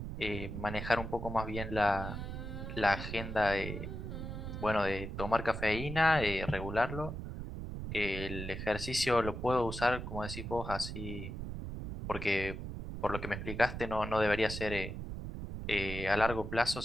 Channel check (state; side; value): noise; right; rumble, 6 dB below the sound